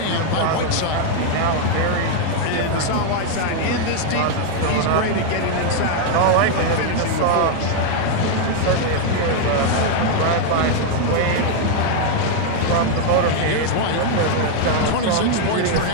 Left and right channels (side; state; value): both; different; correlation 0.00